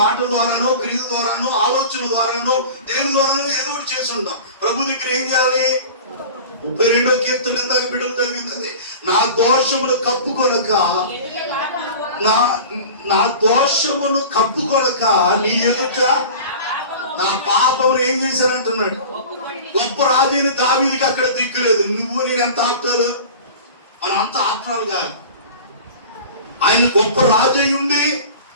ద్వారానో, క్రియ ద్వారానో, ఆలోచన ద్వారానో, దేని ద్వారానో ఏదో ఒకటి చేసి ఉంటాం. ప్రభు దగ్గర ఏం చేయాలి? 32వ కీర్తన ఇందాక బిడ్డలు చదివింది, నా దోషమును కప్పుకొనక నా దోషమును కప్పుకొనక నీ ఎదుట నా పాపమును ఏం చేశానంటున్నాడు. గొప్ప రాజైన దావీదుకి అక్కడ దిక్కులేదు. నువ్వు నేను ఎంత ఆప్తాలు, మనం అంత ఆప్తాలు కాదు. ఆయన గొప్ప రాజు అయి ఉండి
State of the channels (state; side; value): inverted; both; correlation -0.37